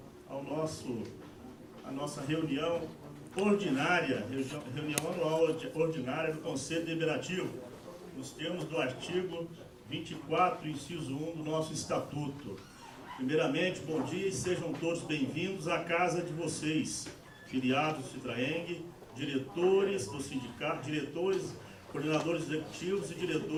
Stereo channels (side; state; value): both; identical; correlation 1.00